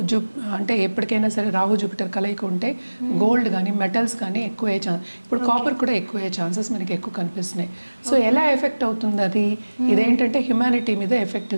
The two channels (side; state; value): both; inverted; correlation -1.00